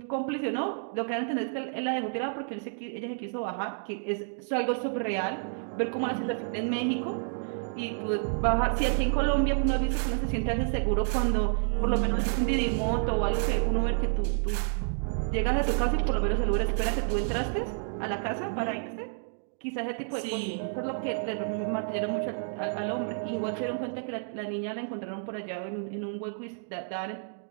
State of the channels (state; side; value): silent; left; digital silence